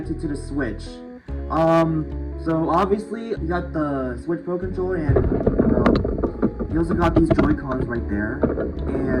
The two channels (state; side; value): identical; both; correlation 1.00